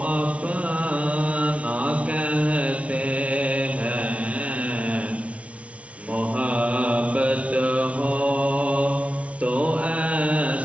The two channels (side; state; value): left; late; 0.064 ms